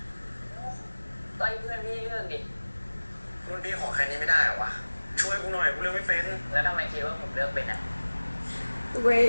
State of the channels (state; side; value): inverted; both; correlation -1.00